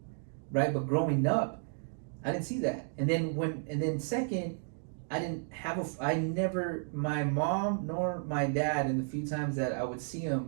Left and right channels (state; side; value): silent; left; digital silence